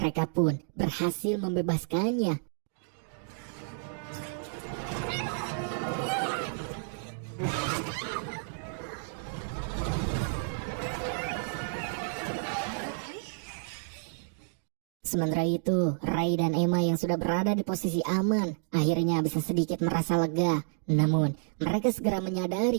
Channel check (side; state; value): left; silent; digital silence